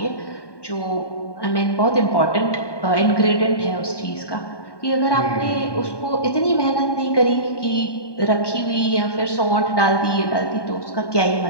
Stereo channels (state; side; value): late; right; 1.2 ms